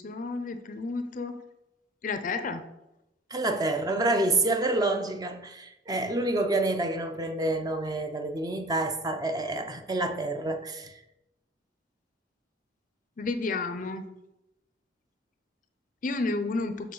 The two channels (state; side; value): normal; both; correlation 0.45